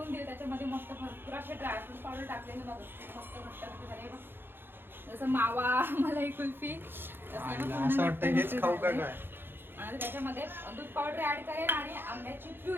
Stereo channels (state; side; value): late; left; 0.10 ms